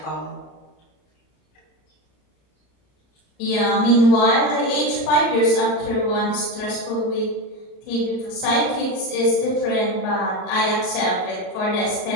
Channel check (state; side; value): late; right; 33 ms